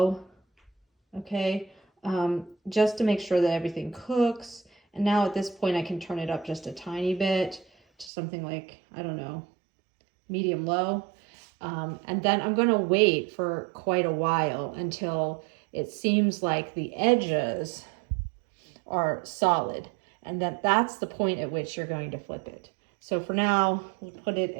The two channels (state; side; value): drops out; left; at 8.1 s